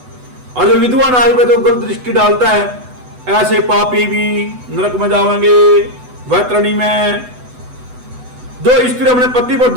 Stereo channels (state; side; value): late; left; 8.0 ms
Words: और जो विधवा नारी पे तो गलत दृष्टि डालता है, ऐसे पापी भी नरक में जाएंगे वैतरणी में। जो स्त्री अपने पति पर